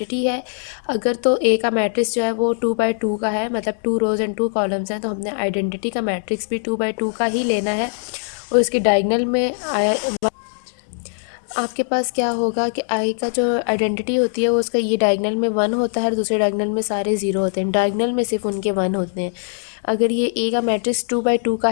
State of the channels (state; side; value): silent; right; 65 dB below the other